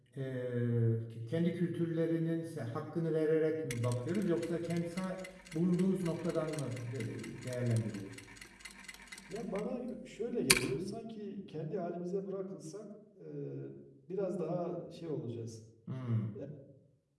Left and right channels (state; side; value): identical; both; correlation 1.00